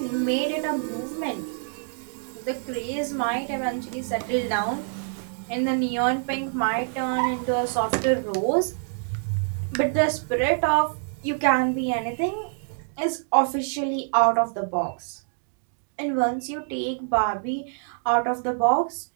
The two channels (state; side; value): silent; left; digital silence